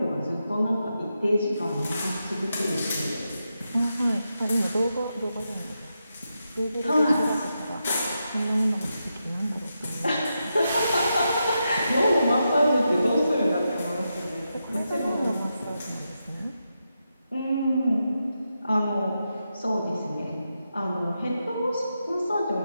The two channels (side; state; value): both; inverted; correlation -0.86